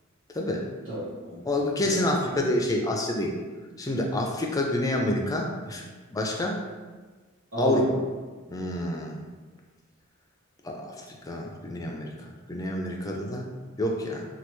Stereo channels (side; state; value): both; normal; correlation 0.42